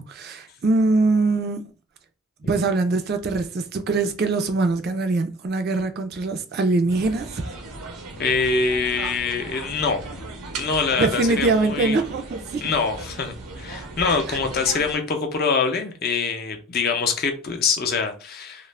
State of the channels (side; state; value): both; normal; correlation 0.42